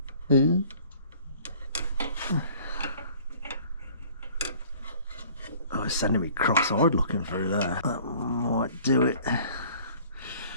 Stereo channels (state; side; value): inverted; both; correlation -0.51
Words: Oh, it's sending me cross-eyed looking through there. That might do it.